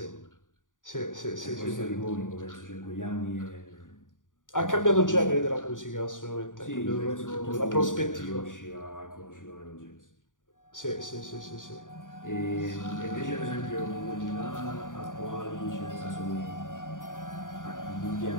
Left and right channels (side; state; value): right; late; 0.88 ms